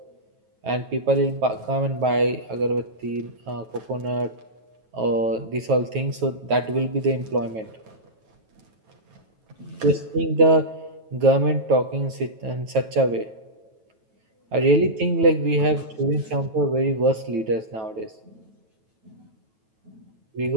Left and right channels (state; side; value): late; left; 9.2 ms